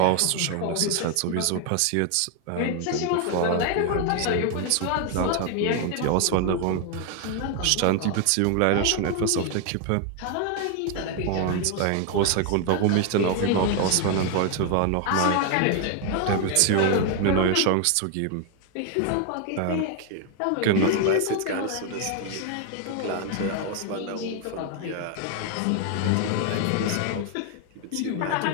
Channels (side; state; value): both; different; correlation 0.00